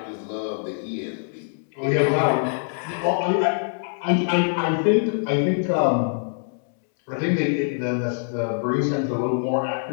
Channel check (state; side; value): silent; right; digital silence